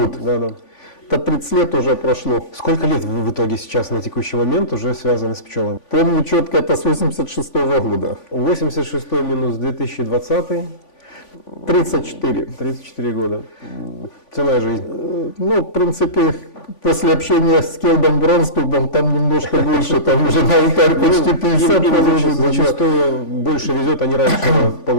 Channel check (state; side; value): late; right; 3.5 ms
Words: Да. Это 30 лет уже прошло. Сколько лет вы в итоге сейчас на текущий момент уже связаны с пчелами? Помню четко, это с 86-го года. 86 минус 2020. 34. 34 года. Целая жизнь. Ну, в принципе, после общения с Келдом Бронстубом, там немножко больше, там уже на алтарь почти 50. Им зачастую больше везет, они раньше